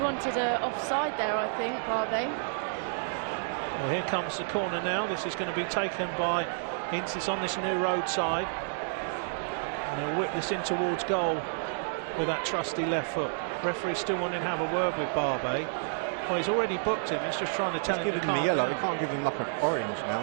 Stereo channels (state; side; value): silent; left; digital silence